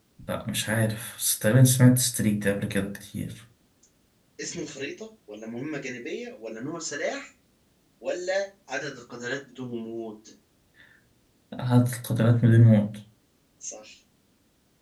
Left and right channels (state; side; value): identical; both; correlation 1.00